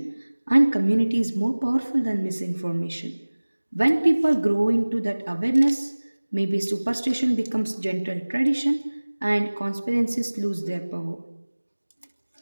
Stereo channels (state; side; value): inverted; both; correlation -1.00